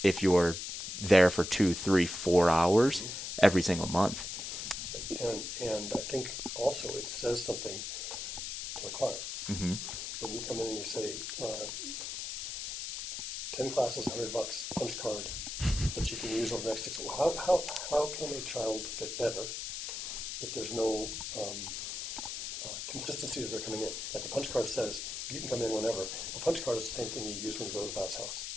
if you're there for 2, 3, 4 hours every single month. And I think also it says something to the client. Mm-hmm. When you come in and you say, 10 classes, $100, punch card that you can use over the next 6 months. How can a child get better if there's no consistency that they're coming in? Like a punch card says, you can come in whenever. A punch card is the same thing you use when you go to the bounce house.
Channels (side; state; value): left; noise; hiss, 5 dB below the sound